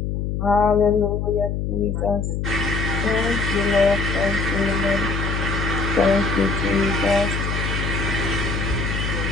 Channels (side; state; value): left; noise; hum, 2 dB below the sound